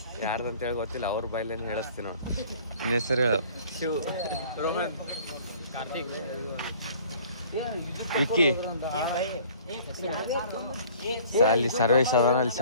ಯಾರ್ದಂತೇಳಿ ಗೊತ್ತಿಲ್ಲ, ಅವ್ರ ಬಾಯ್ಲೇನು ಹೇಳಿಸ್ತೀನಿ ನೋಡಿ. ನಿನ್ನ ಹೆಸರು ಶಿವ್, ರೋಹನ್, ಕಾರ್ತಿಕ್, ವಿಕ್ಕಿ. ಅಲ್ಲಿ ಸರ್ವೇಶ್ ಅದಾನ, ಅಲ್ಲಿ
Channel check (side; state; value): both; inverted; correlation -0.52